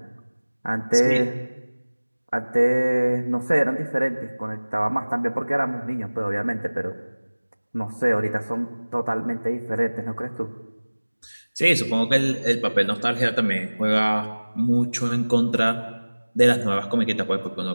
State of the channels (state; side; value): inverted; both; correlation -1.00